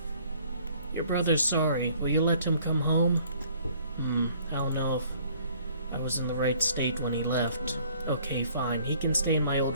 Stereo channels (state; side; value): inverted; both; correlation -0.58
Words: Your brother's sorry. Will you let him come home? I don't know if I was in the right state when he left. Okay, fine. He can stay in my